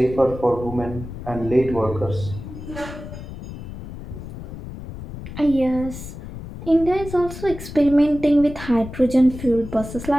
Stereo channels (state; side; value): noise; left; rumble, 11 dB below the sound